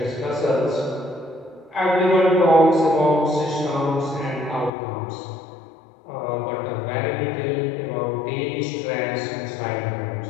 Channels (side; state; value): right; drops out; at 4.7 s